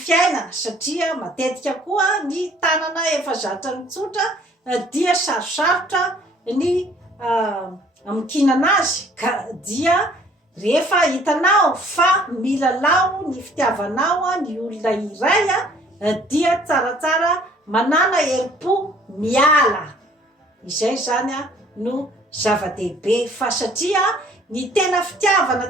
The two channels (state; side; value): normal; both; correlation 0.57